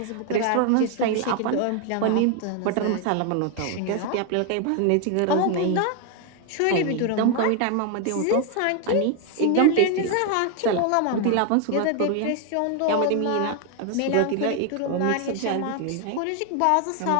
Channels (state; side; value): different; both; correlation 0.01